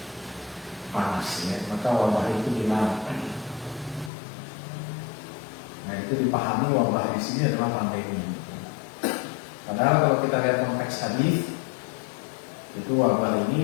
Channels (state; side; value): drops out; right; at 4.1 s